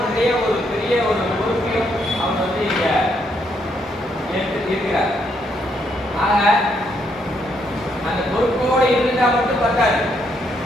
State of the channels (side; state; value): both; normal; correlation 0.75